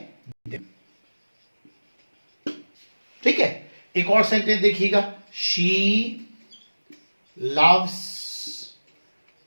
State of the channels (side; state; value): both; inverted; correlation -1.00